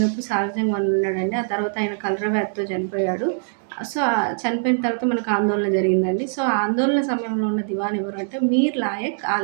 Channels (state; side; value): silent; left; digital silence